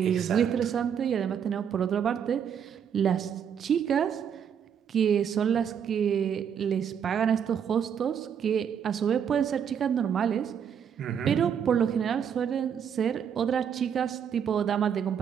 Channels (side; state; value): left; quieter; 8.0 dB